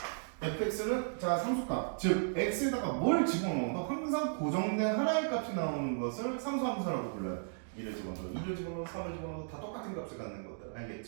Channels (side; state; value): left; silent; digital silence